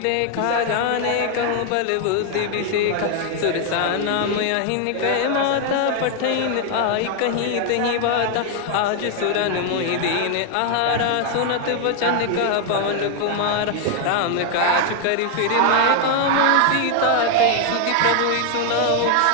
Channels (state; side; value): different; both; correlation 0.00